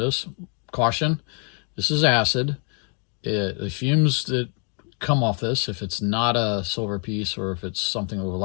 caution, this is acid. The fumes that come off this, if it's not a silver piece or if it's something with a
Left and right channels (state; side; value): quieter; right; 39.6 dB